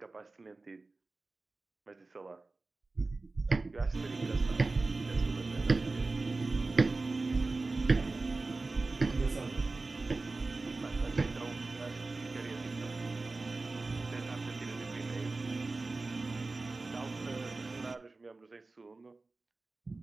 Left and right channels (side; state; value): left; quieter; 3.5 dB